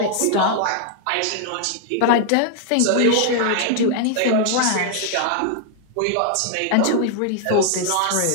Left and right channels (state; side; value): different; both; correlation 0.00